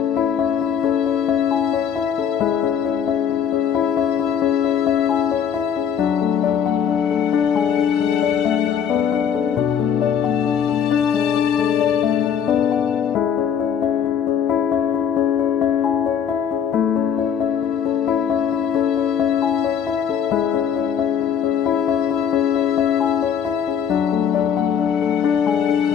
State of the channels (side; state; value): right; quieter; 8.0 dB